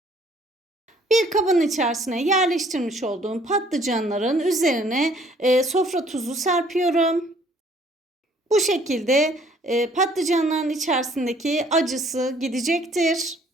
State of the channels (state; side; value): normal; both; correlation 0.59